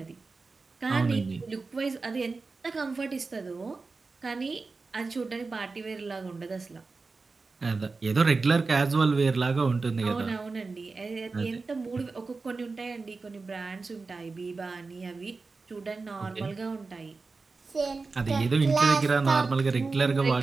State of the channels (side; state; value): left; quieter; 4.1 dB